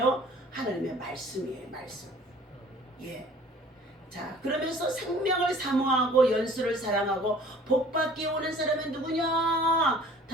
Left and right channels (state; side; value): normal; both; correlation 0.50